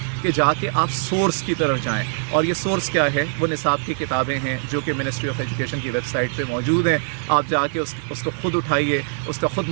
کہ جا کے آپ سورس کی طرف جائیں، اور یہ سورس کیا ہے؟ وہ نصاب کی کتابیں ہیں جو کہ منسٹری آف ایجوکیشن کی ویب سائٹ پہ موجود ہیں۔ آپ جا کے اس کو خود اٹھائیے، اس کا خود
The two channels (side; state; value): left; silent; 64 dB below the other